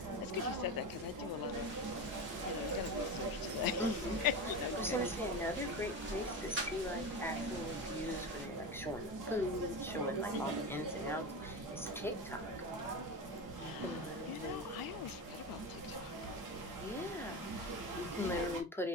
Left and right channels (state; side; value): normal; both; correlation 0.22